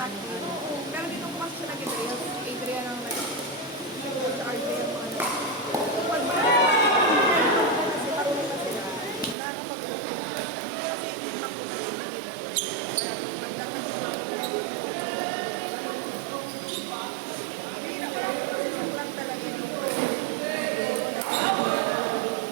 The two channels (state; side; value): drops out; left; at 9.3 s